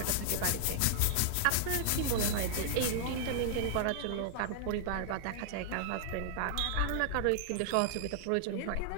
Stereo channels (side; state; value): both; different; correlation -0.01